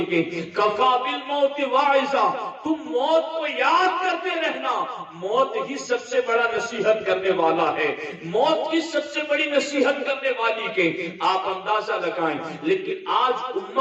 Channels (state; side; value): identical; both; correlation 1.00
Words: ہیں کفا بالموت واعظا، تم موت کو یاد کرتے رہنا، موت ہی سب سے بڑا نصیحت کرنے والا ہے، موت ہی سب سے بڑی نصیحت کرنے والی کہ آپ اندازہ لگائیں. لیکن آج